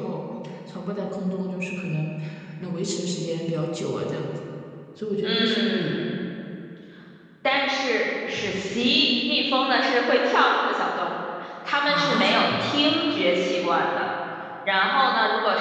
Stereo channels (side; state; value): both; identical; correlation 1.00